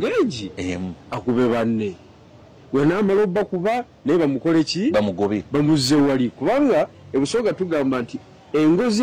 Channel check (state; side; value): identical; both; correlation 1.00